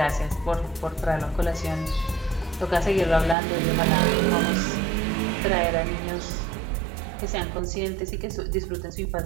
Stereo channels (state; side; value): drops out; left; at 3.4 s